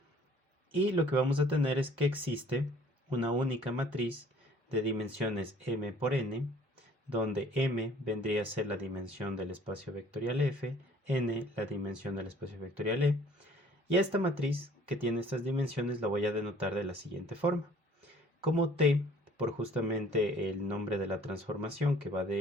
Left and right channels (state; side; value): normal; both; correlation 0.55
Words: y lo que vamos a tener es que existe una única matriz de dimensiones m por n, donde m vendría a ser la dimensión del espacio vectorial f, n la dimensión del espacio vectorial e, y a esta matriz que tiene estas dimensiones la voy a denotar de la siguiente forma, como t por justamente el nombre de la transformación que va